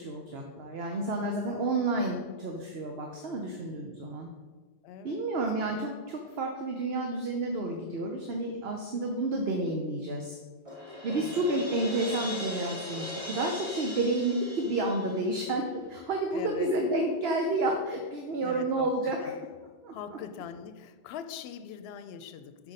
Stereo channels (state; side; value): normal; both; correlation -0.06